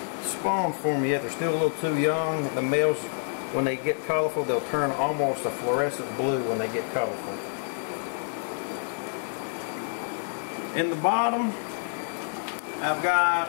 spawned for me yet. They're still a little too young. The males when they get colorful, they'll turn almost a fluorescent blue when they get colorful. In the bottom, I've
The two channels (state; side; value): silent; right; digital silence